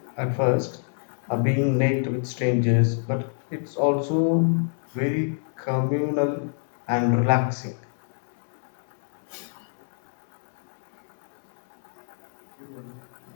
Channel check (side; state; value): right; silent; digital silence